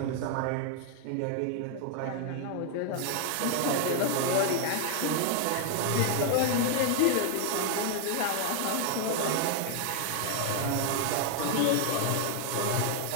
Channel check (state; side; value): different; both; correlation 0.00